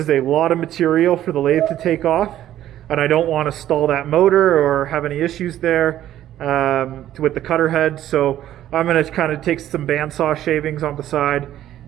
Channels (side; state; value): left; quieter; 12.4 dB